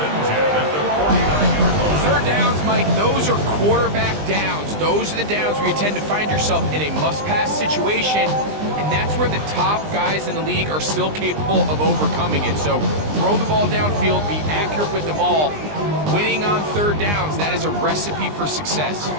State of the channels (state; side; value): late; left; 20 ms